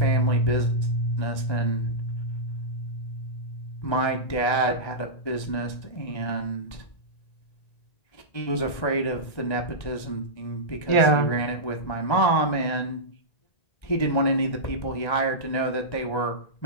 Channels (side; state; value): right; late; 1.3 ms